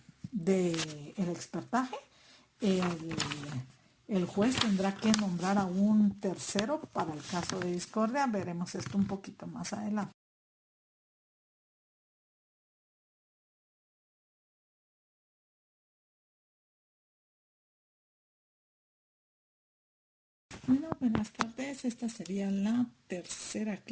del expertaje, el juez tendrá que nombrar a un tercero para el caso de discordia. Veremos esto un poquito más adelante. Bueno, buenas tardes. Esta sería la tercera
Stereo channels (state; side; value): identical; both; correlation 1.00